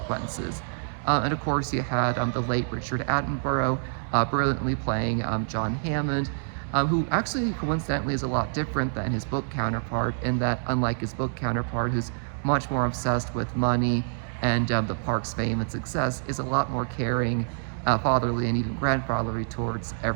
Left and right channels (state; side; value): silent; left; digital silence